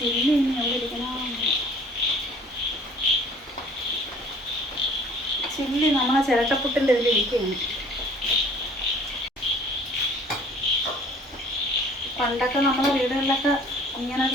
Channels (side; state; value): both; normal; correlation 0.52